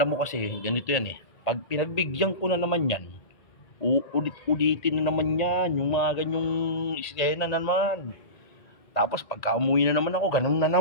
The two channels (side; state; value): right; late; 1.8 ms